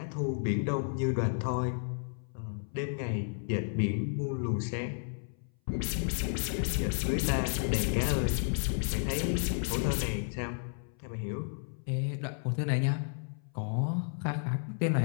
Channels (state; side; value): silent; right; 56 dB below the other